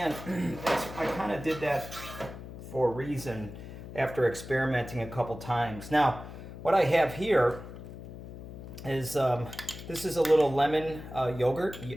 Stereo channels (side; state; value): left; noise; hum, 12 dB below the sound